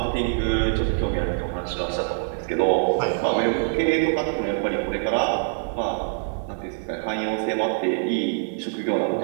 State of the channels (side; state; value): left; silent; digital silence